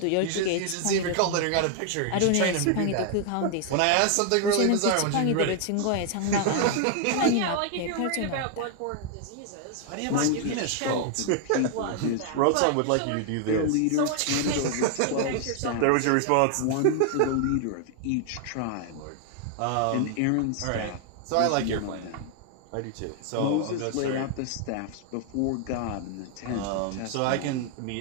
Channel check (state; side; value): different; both; correlation 0.00